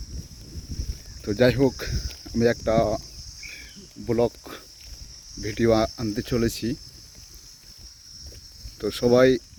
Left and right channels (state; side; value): identical; both; correlation 1.00